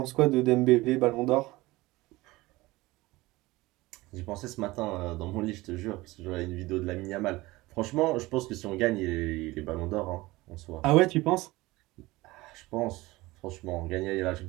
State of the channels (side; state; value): left; quieter; 20.1 dB